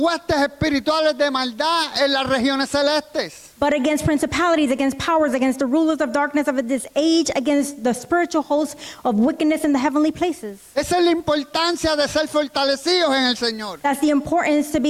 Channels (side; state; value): both; identical; correlation 1.00